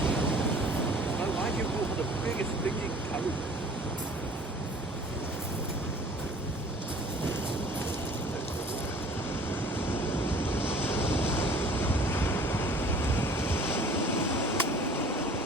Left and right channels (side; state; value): both; normal; correlation 0.49